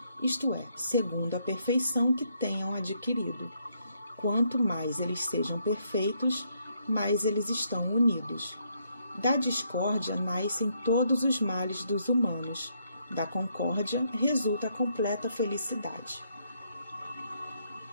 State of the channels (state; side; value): inverted; both; correlation -0.74